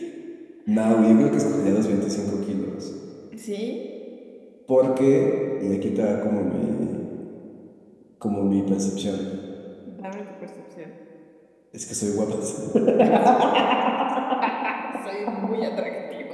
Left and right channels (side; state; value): both; identical; correlation 1.00